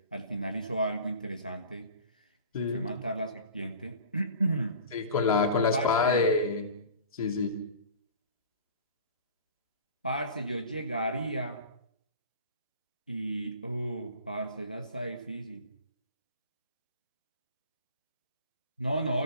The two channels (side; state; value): both; inverted; correlation -0.39